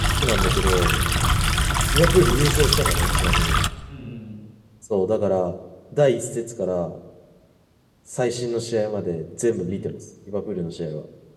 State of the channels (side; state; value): both; identical; correlation 1.00